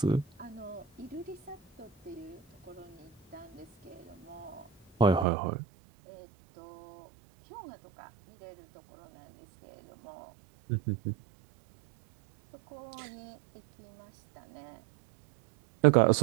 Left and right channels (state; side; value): drops out; left; at 5.2 s